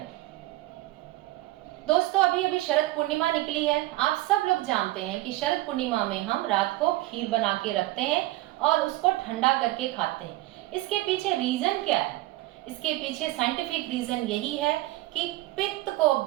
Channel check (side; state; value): left; quieter; 18.0 dB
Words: दोस्तों अभी अभी शरद पूर्णिमा निकली है। आप सब लोग जानते हैं कि शरद पूर्णिमा में हम रात को खीर बना के रखते हैं और उसको ठंडा करके खाते हैं। इसके पीछे रीजन क्या है? इसके पीछे साइंटिफिक रीजन यही है कि पित्त को